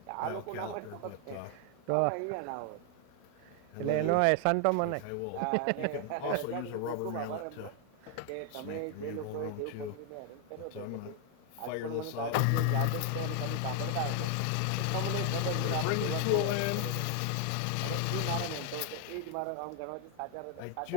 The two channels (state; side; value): different; both; correlation 0.00